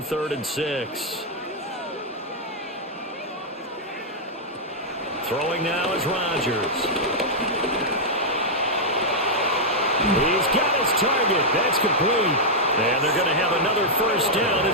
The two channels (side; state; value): both; normal; correlation -0.06